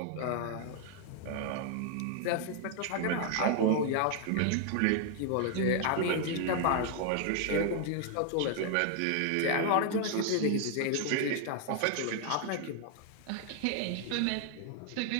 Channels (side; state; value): both; different; correlation 0.00